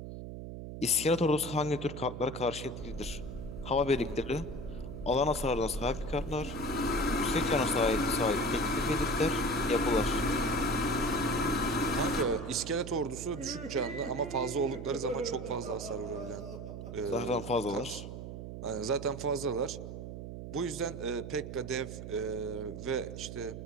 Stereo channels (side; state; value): right; noise; hum, 9 dB below the sound